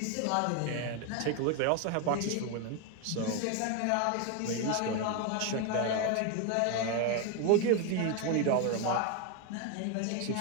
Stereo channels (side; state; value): both; different; correlation 0.02